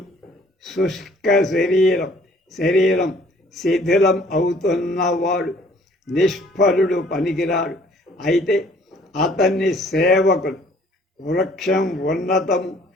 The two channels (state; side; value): normal; both; correlation 0.58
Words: శుష్క శరీరం శిథిలం అవుతున్నవాడు, నిష్ఫలుడు, పనికిరాడు. అయితే అతన్ని సేవకులు వృక్షం ఉన్నతము